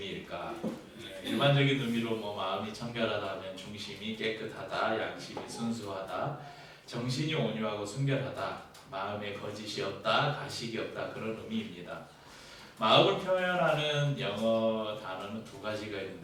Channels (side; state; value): both; identical; correlation 1.00